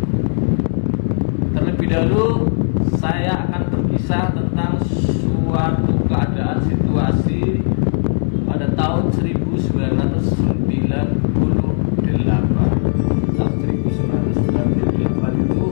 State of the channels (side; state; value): right; silent; digital silence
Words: Terlebih dahulu saya akan berkisah tentang suatu keadaan situasi pada tahun 1998. Tahun 1998 itu